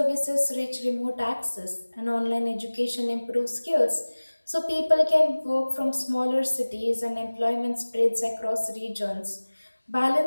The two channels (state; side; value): inverted; both; correlation -1.00